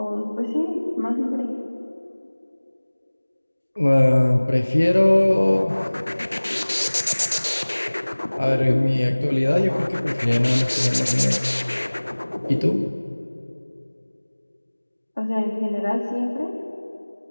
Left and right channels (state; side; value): inverted; both; correlation -1.00